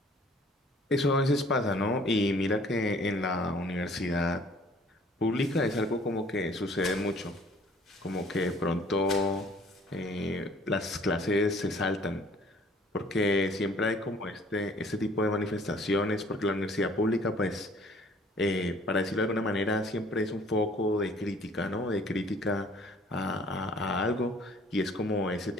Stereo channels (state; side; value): normal; both; correlation 0.55